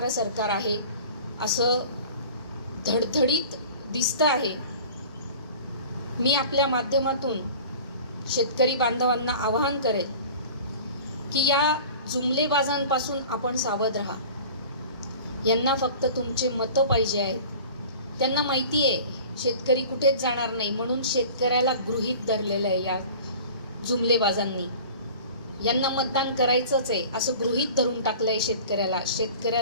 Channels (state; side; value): inverted; both; correlation -0.42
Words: सरकार आहे असं धडधडीत दिसतं आहे. मी आपल्या माध्यमातून शेतकरी बांधवांना आवाहन करेल की या जुमलेबाजांपासून आपण सावध राहा. यांना फक्त तुमचे मतं पाहिजे आहेत. त्यांना माहिती आहे शेतकरी कुठेच जाणार नाही म्हणून शेतकऱ्याला गृहीत धरलेलं आहे या जुमलेबाजांनी. यांना मतदान करायचंच आहे असं गृहीत धरून टाकलंय शेतकऱ्याला.